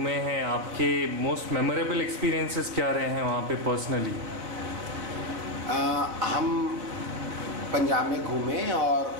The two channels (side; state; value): left; late; 4.2 ms